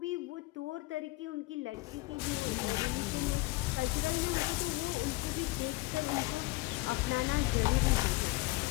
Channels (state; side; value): quieter; right; 21.6 dB